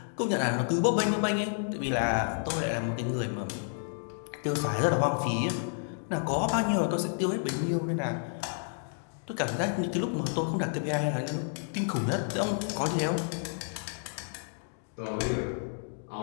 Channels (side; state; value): right; silent; digital silence